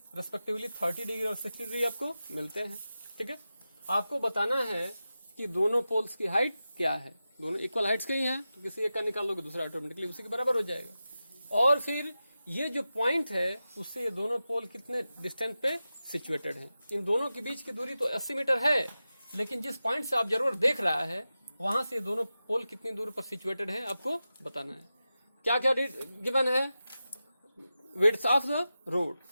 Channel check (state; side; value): inverted; both; correlation -0.93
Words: respectively 30 degree और 60 डिग्री आपको मिलते हैं, ठीक है। आपको बताना है कि दोनों पोल्स की हाइट क्या है। दोनों इक्वल हाइट्स के ही हैं, तो किसी एक का निकाल लोगे दूसरा ऑटोमेटिकली उसी के बराबर हो जाएगा। और फिर ये जो पॉइंट है उससे ये दोनों पोल कितने डिस्टेंस पे सिचुएटेड हैं। इन दोनों के बीच की दूरी तो 80 मीटर है, लेकिन जिस पॉइंट से ऑब्जर्वर देख रहा है वहां से दोनों पोल कितनी दूर पर सिचुएटेड हैं आपको बताना है। क्या क्या गिवन है, विड्थ ऑफ द